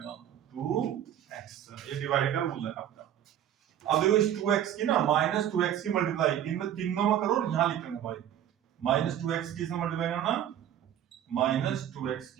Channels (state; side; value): quieter; left; 10.7 dB